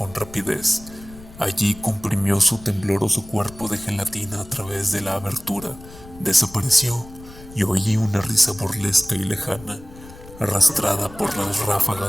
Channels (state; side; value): noise; left; rumble, 18 dB below the sound